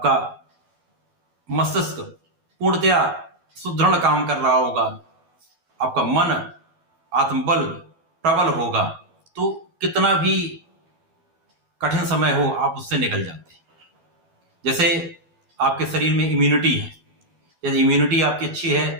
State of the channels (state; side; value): late; left; 12 ms